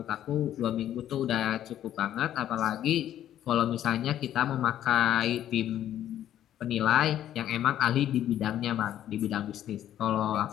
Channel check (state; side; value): quieter; right; 11.5 dB